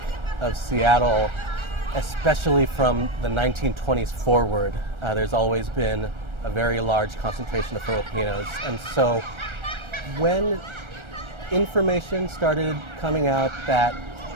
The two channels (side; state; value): left; late; 1.3 ms